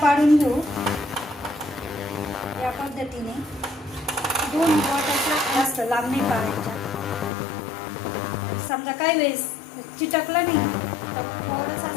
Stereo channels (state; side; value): drops out; right; at 7.3 s